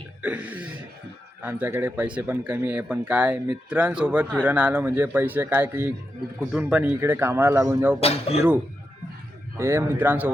आमच्याकडे पैसे पण कमी आहे, पण काय मित्रांसोबत फिरून आलो म्हणजे पैसे काय की कुठून पण इकडे कामाला लागून जाऊ पण फिरू. हे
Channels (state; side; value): normal; both; correlation 0.87